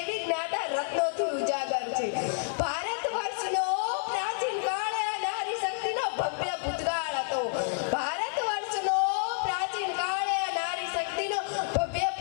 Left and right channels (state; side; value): silent; right; digital silence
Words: જ્ઞાતા રત્નોથી ઉજાગર છે। ભારત વર્ષનો પ્રાચીન કાળ આ નારી શક્તિનો ભવ્ય ભૂતકાળ હતો। ભારત વર્ષનો પ્રાચીન કાળ આ નારી શક્તિનો ભવ્ય